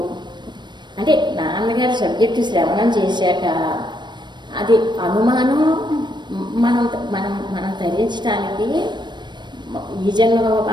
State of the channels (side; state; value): left; late; 0.22 ms